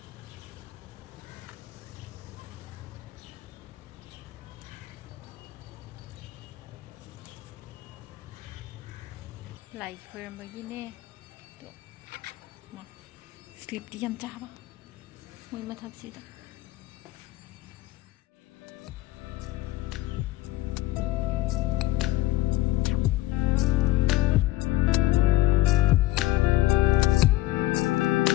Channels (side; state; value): right; quieter; 17.1 dB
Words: lại khơi mà cái nè, mà sleep đi ăn chả ba, mình mà thật sự đó.